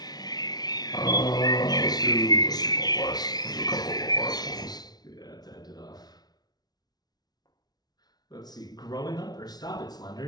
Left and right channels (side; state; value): right; late; 0.19 ms